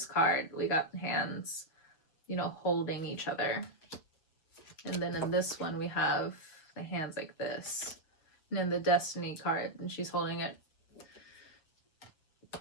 card, we got hands, you know, holding each other. And then in this one, we have the hands like this. And then the Destiny card, and she's holding it.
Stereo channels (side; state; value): right; late; 6.6 ms